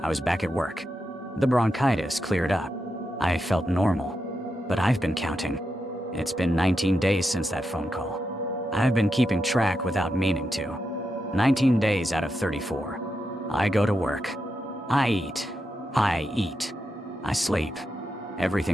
I was back at work. The bronchitis cleared up. I felt normal. But I've been counting. It's been 19 days since that phone call. I've been keeping track without meaning to. 19 days out of 34. I go to work. I eat. I sleep.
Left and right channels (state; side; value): normal; both; correlation 0.86